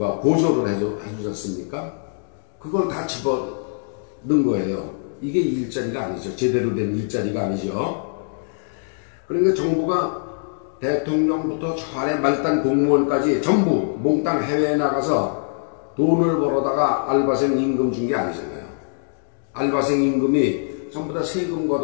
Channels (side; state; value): right; silent; digital silence